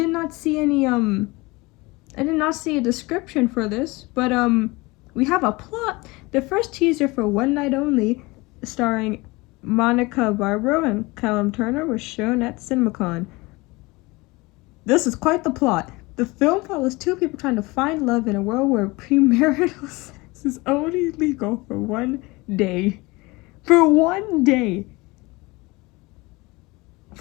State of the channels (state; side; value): quieter; right; 23.5 dB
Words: not see any I did not see a description for this, but we have a plot. The first teaser for One Night Only, starring Monica Barbaro and Callum Turner, was shown at CinemaCon. This is quite the plot. The film follows two people trying to find love in a world where premarital sex is only legal for one day. For one day.